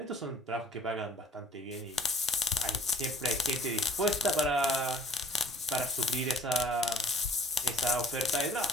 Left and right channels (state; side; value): normal; both; correlation 0.52